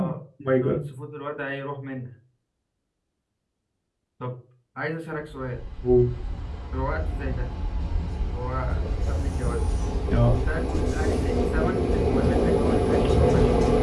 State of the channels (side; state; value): both; identical; correlation 1.00